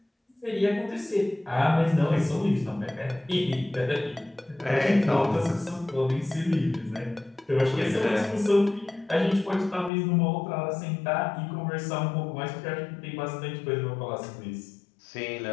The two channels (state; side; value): drops out; right; at 9.9 s